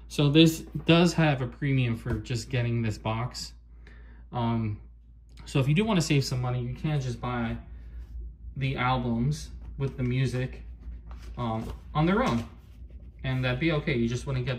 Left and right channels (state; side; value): identical; both; correlation 1.00